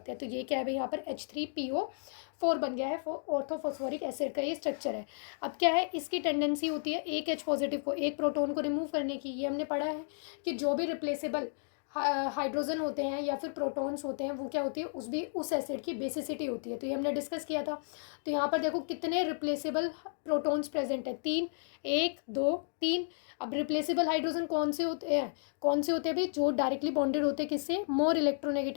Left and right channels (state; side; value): silent; right; digital silence